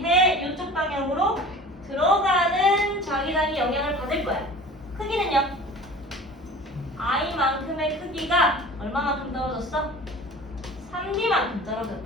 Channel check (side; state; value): both; normal; correlation 0.41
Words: 이쪽 방향으로 들어가는 자기장이 영향을 받을 거야. 크기는요? I만큼의 크기가 얼마만큼 떨어졌어? 3D만큼